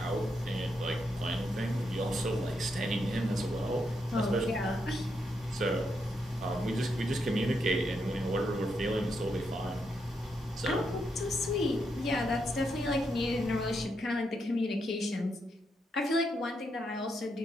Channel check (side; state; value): both; normal; correlation 0.81